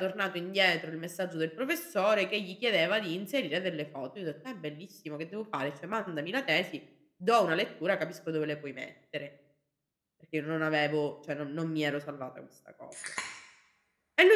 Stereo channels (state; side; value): identical; both; correlation 1.00